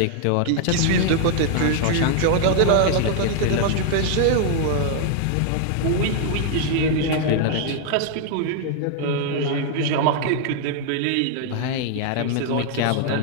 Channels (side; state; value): both; different; correlation 0.00